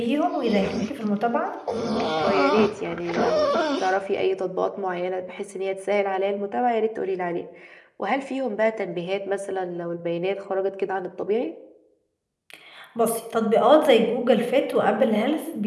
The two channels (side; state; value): both; identical; correlation 1.00